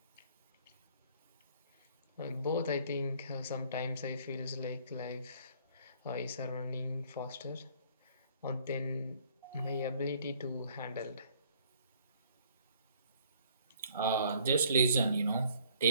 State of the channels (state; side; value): inverted; both; correlation -0.59